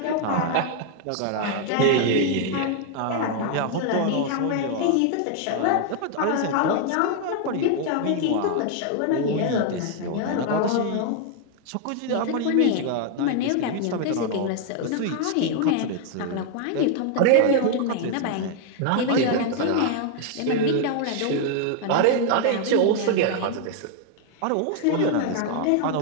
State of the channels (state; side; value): different; both; correlation 0.00